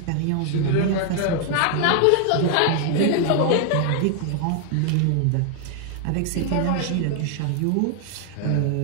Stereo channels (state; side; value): different; both; correlation 0.00